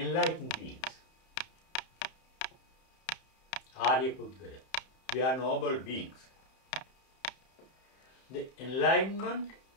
beings. Arya Pudgala. We are noble beings. The enlightenment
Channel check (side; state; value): right; late; 31 ms